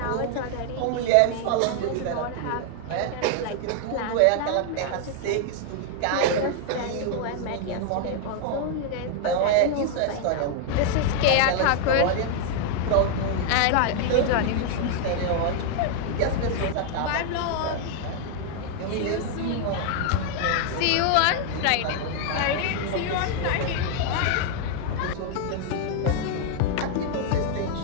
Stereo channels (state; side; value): different; both; correlation 0.00